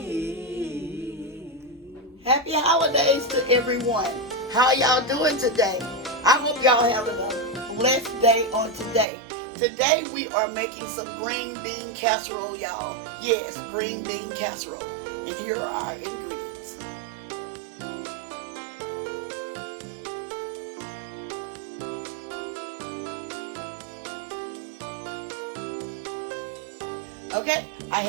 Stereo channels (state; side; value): drops out; left; at 9.1 s